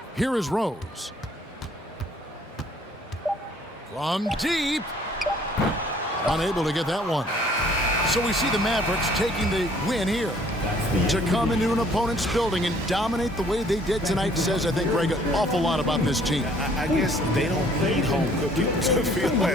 Here is Rose. From deep. Unable to get that one. So we see the Mavericks taking the win here. To come into an opponent's building and dominate the way they did tonight says, I think, Greg, an awful lot about this team. I guess they don't need home cooking to feel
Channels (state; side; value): normal; both; correlation 0.59